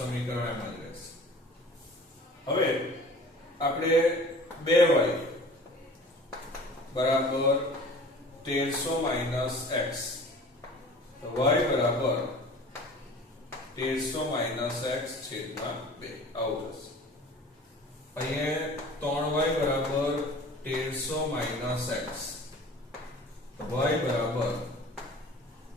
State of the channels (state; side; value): normal; both; correlation 0.44